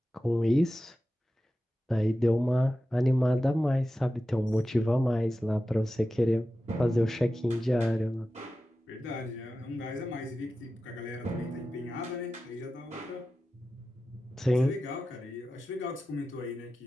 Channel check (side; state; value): both; normal; correlation 0.93